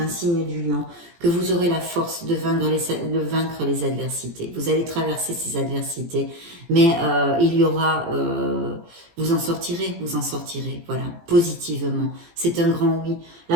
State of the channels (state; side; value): late; left; 17 ms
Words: signe du lion, que vous aurez la force de vaincre les adversités. Vous allez traverser ces adversités, mais il y aura, vous en sortirez, voilà, positivement. C'est un grand oui.